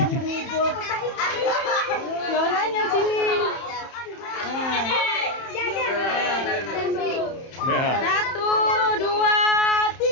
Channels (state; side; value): late; right; 31 ms